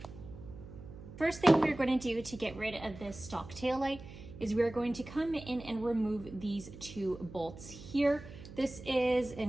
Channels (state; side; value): noise; right; hum, 15 dB below the sound